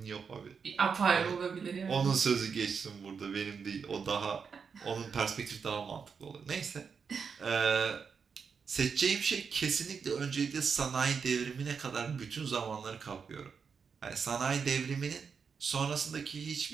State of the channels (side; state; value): left; quieter; 6.0 dB